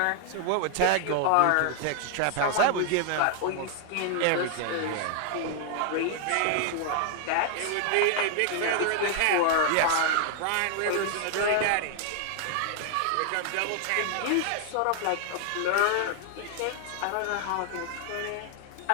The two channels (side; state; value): both; different; correlation 0.00